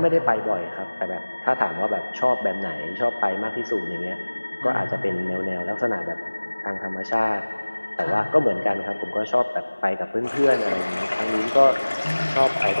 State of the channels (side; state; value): both; inverted; correlation -1.00